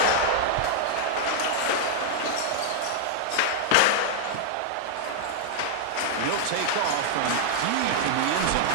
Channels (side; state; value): both; different; correlation -0.01